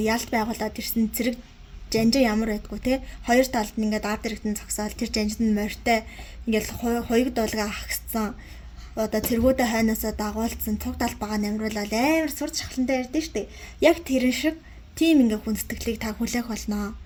ялт байгуулад ирсэн зэрэг жанжин ямар байдгүй те хоёр талд нь ингээд ард иргэдэн зогсоол тэр жанжинд нь морьтой ингээд хоёуг дуулга ахсан одоо цэргүүдэ хайнаасаа дагуулсан цуг талбагаа намруулаад амар сурч шахлантай ярьдэн штэ яг тэрэн шиг тийм ингээ хүндэтгэлийг та хүлээх болно.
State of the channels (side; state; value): both; identical; correlation 1.00